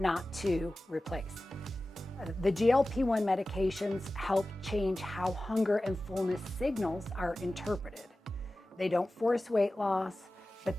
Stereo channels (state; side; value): normal; both; correlation 0.96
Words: to replace. The GLP-1 medications help change how hunger and fullness signals are interpreted. They don't force weight loss, but